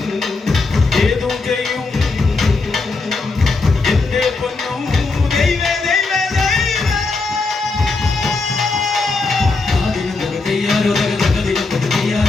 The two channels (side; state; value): right; quieter; 3.8 dB